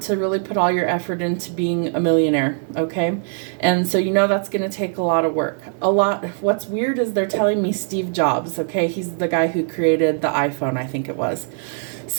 to really put all your effort into being a millionaire, okay? And so that's going to take a lot of work. What's weird is they're telling me Steve Jobs, okay? He's the guy who created the iPhone, I think it was.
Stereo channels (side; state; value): left; silent; 58 dB below the other